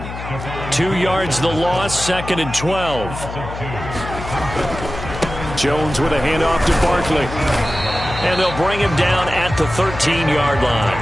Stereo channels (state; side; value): noise; left; hum, 9 dB below the sound